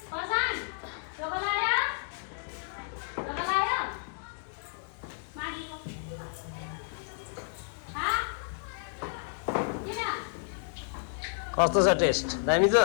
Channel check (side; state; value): right; silent; digital silence